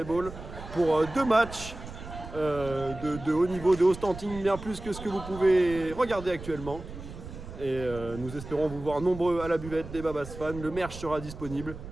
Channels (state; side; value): noise; right; rumble, 12 dB below the sound